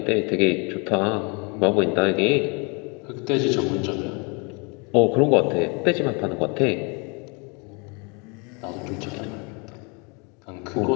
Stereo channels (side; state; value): right; quieter; 32.0 dB